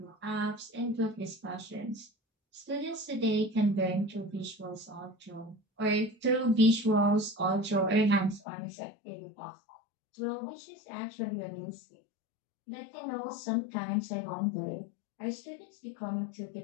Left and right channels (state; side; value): drops out; right; at 8.4 s